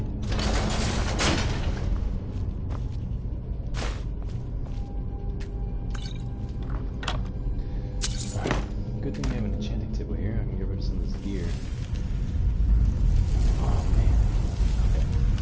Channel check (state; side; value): identical; both; correlation 1.00